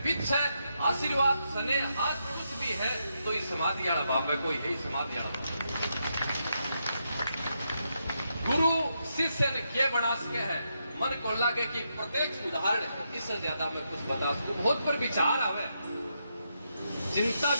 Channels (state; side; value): inverted; both; correlation -0.82